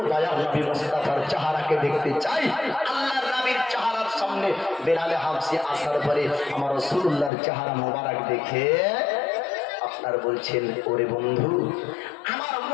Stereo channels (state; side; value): drops out; right; at 7.3 s